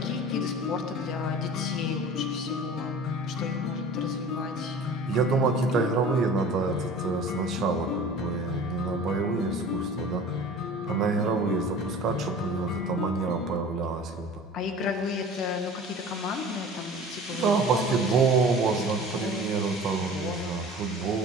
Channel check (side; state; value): both; normal; correlation 0.41